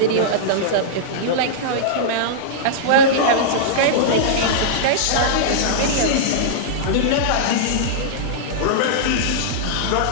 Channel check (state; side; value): different; both; correlation -0.03